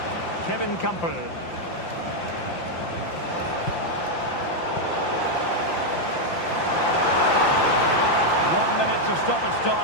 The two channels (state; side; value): late; right; 5.8 ms